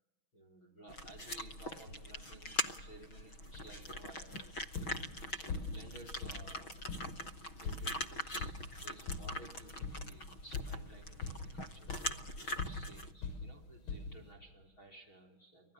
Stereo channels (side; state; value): right; late; 6.2 ms